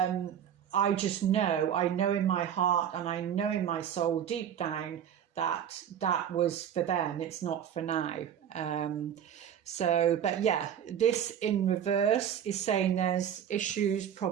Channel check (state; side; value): quieter; left; 9.2 dB